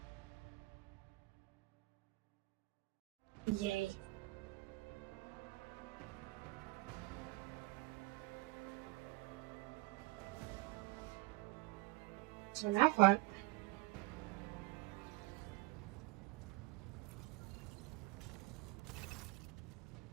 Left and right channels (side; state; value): left; quieter; 23.1 dB